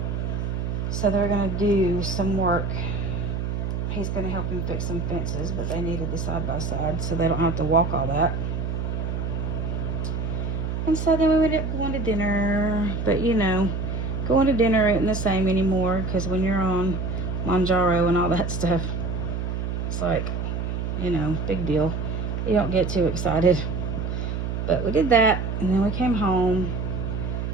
So they're gonna do some work. He's gonna help him fix some fences, but they needed the side-by-side so they don't have to walk all that. And so then we ended up going to dinner. But you know, going to dinner isn't the same anymore, because when you're on Manjaro and all that stuff, it's like, you know, big deal. You don't get too excited. But we did that, and then we came home,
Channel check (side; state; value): right; noise; hum, 2 dB below the sound